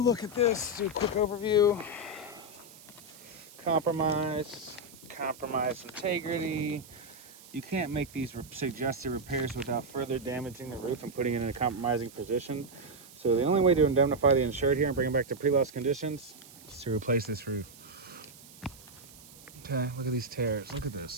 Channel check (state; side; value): noise; right; hiss, 20 dB below the sound